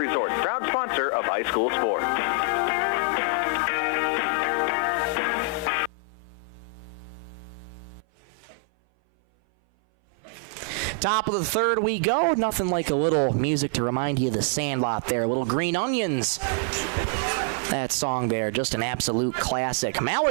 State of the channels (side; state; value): left; drops out; at 5.9 s